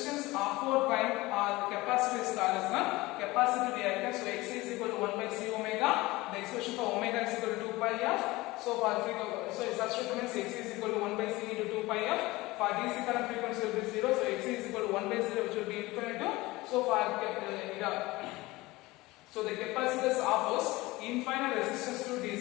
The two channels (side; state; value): right; quieter; 20.4 dB